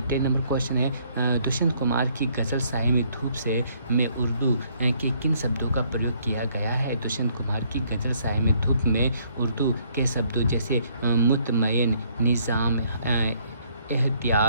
10 नंबर क्वेश्चन है, दुष्यंत कुमार की गज़ल साए में धूप में उर्दू के किन शब्दों का प्रयोग किया गया है। दुष्यंत कुमार की गज़ल साए में धूप में उर्दू के शब्दों जैसे मुतमय्यन, निज़ाम,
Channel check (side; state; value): both; inverted; correlation -0.66